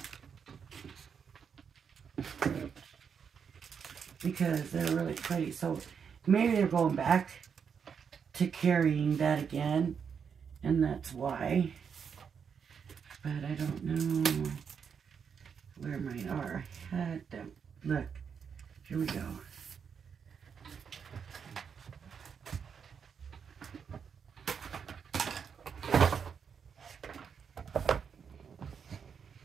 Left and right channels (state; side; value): quieter; left; 6.8 dB